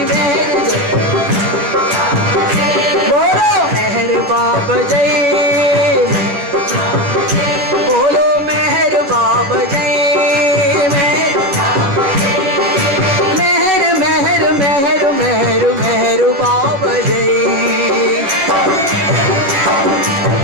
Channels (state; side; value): late; left; 11 ms